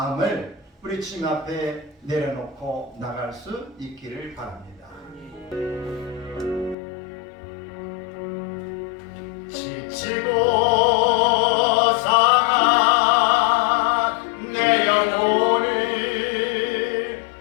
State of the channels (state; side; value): drops out; right; at 6.8 s